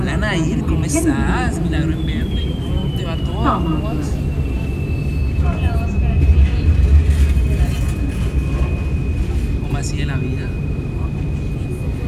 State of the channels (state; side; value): identical; both; correlation 1.00